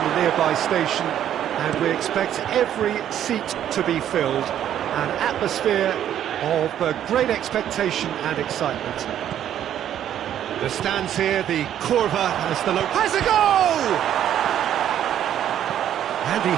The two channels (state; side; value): quieter; left; 10.6 dB